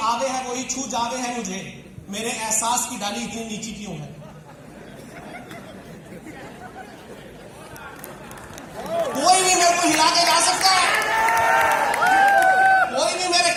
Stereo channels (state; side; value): identical; both; correlation 1.00